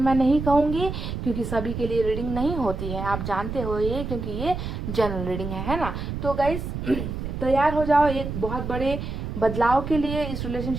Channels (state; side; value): noise; right; rumble, 5 dB below the sound